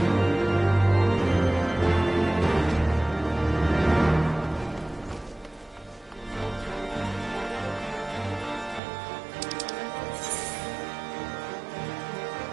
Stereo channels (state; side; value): drops out; left; at 8.8 s